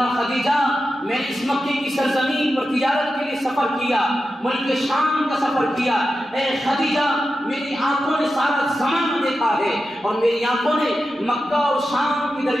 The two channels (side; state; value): both; normal; correlation 0.91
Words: خدیجہ، میں نے اس مکے کی سرزمین پر تجارت کے لیے سفر کیا، ملک شام کا سفر کیا، اے خدیجہ میری آنکھوں نے سارا زمانہ دیکھا ہے اور میری آنکھوں نے مکہ اور شام کے